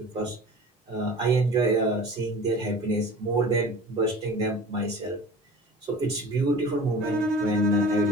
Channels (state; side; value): normal; both; correlation 0.40